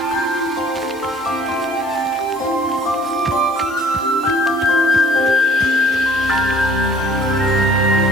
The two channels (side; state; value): right; noise; hiss, 23 dB below the sound